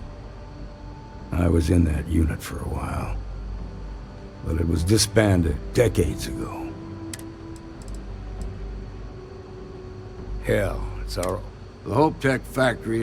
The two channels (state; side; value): identical; both; correlation 1.00